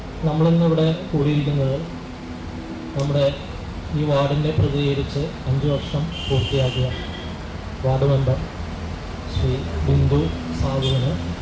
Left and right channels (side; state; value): both; identical; correlation 1.00